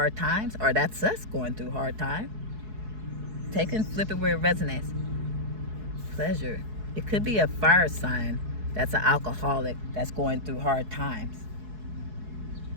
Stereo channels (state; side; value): late; left; 4.7 ms